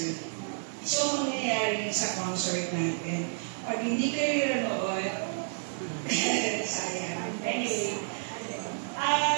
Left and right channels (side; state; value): left; silent; 58 dB below the other